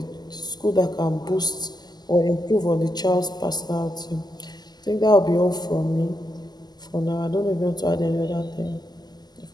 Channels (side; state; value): right; late; 0.20 ms